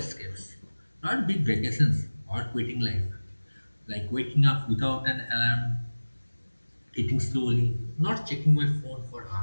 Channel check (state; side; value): inverted; both; correlation -1.00